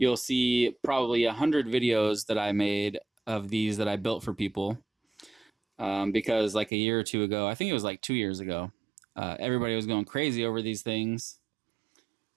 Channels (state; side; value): drops out; left; at 6.7 s